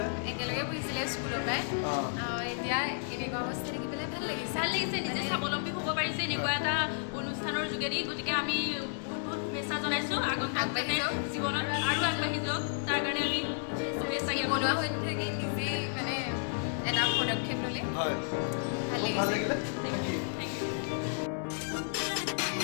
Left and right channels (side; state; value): right; silent; digital silence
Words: একেলগে পঢ়িছিলে স্কুলৰ পৰাই এতিয়া এনেকুৱা অৱস্থা দেখি পেলাই ভাল লাগিছে নিজে স্বাৱলম্বী হ'ব পাৰিছে এনেকুৱা এটা অনুষ্ঠানৰ যোগেদি গতিকে আমি বহুত শুভেচ্ছা জনাইছোঁ আগন্তুক জীৱনত আৰু আগবাঢ়ি যাওক তাৰ কাৰণে আমি শুভেচ্ছা বনোৱা হৈ থাকি নিজেই মানে এটা পদক্ষেপ ল'লে হয় ভাল ভাল লাগিছে লাগিলে থেংক ইউ